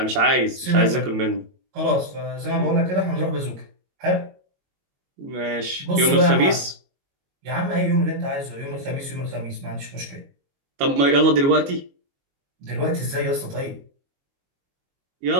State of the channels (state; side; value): late; left; 22 ms